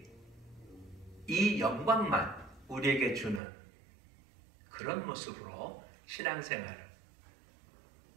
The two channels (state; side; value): drops out; left; at 3.4 s